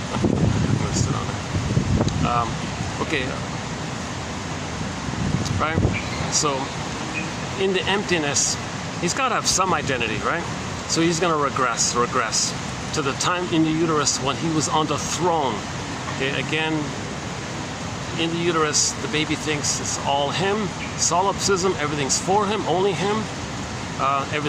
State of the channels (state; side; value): identical; both; correlation 1.00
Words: gonna sit on it. Okay. Right. So in the emptiness, he's got to have some identity, right? So he's gonna regress to the time in the uterus when he was on the throne. Okay. Again. In the uterus, the baby thinks it's all him. Solipsism, everything's for him, only him.